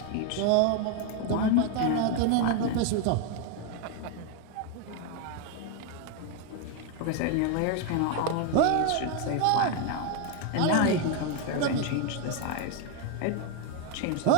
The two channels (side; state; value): both; different; correlation 0.01